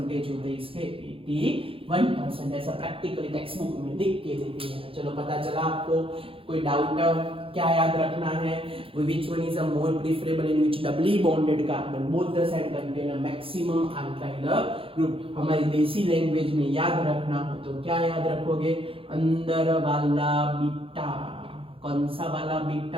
होते हैं, इसके 81%, ऐसा प्रैक्टिकली टेक्स्ट बुक में लिख के देते हैं। चलो पता चला आपको, कोई डाउट क्या याद रखना है, which one is a more preferable in which doubly bonded carbon both the side contain a maximum alkyl group, हमारी देसी लैंग्वेज में याद रखना हो तो क्या याद रखोगे, अंदर वाला बीटा, कौन सा वाला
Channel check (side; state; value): left; late; 0.27 ms